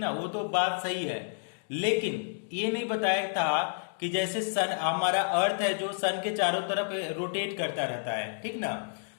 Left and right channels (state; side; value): silent; right; digital silence